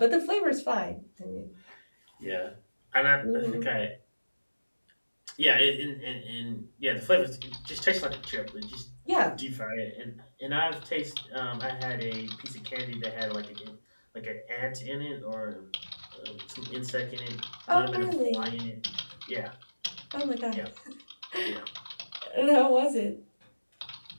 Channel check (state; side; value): inverted; both; correlation -1.00